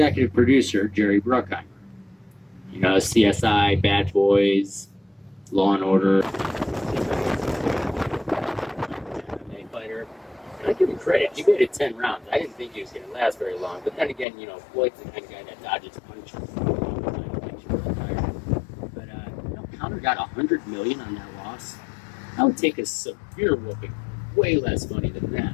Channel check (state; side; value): drops out; right; at 14.2 s